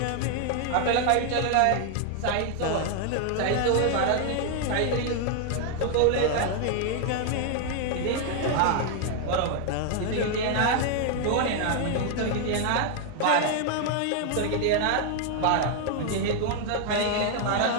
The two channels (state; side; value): different; both; correlation 0.00